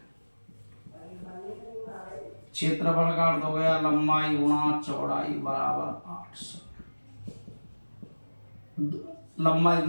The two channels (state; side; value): inverted; both; correlation -1.00